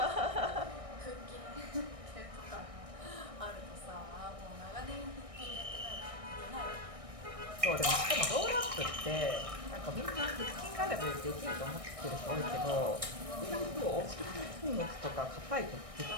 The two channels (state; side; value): late; left; 1.6 ms